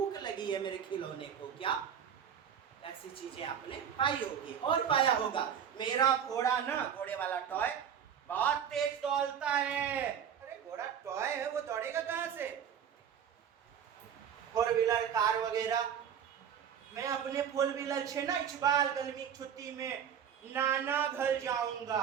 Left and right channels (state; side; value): quieter; left; 8.4 dB